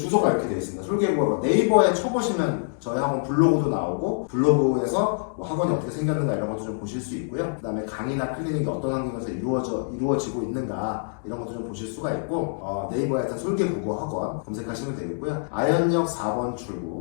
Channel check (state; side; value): silent; right; digital silence